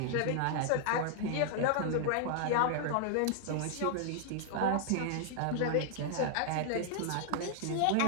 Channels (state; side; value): different; both; correlation -0.01